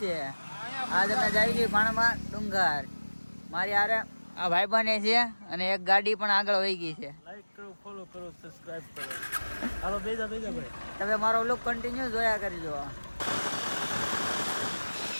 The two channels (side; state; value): both; inverted; correlation -1.00